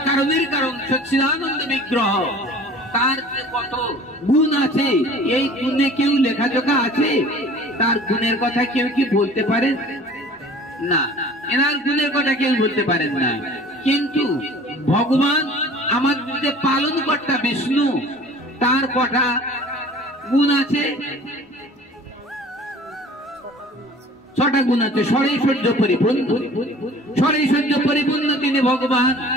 কারণ, সচ্চিদানন্দ বিগ্রহ, তার যে কত গুণ আছে, এই গুণে কেউ লেখাজোখা আছে? তার গুণের কথা কেউ কি বলতে পারেন না? এনার গুণের কথা কেউ বলতে পারেন না। কিন্তু ভগবান আমাদের যে পালন কর্তা বিষ্ণু, তার কটা গুণ আছে? 6টা গুণ আছে। ষড়ৈশ্বর্য পরিপূর্ণ, ষড়ৈশ্বর্য পরিপূর্ণ তিনি ভগবান।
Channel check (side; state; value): both; normal; correlation 0.46